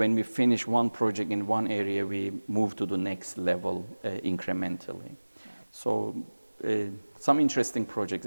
we finish one project in one area, we move to the next level incrementally. So some interesting projects,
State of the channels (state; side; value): inverted; both; correlation -1.00